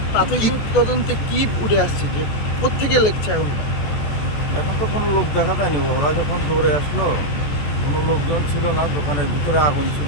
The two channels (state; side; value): late; right; 14 ms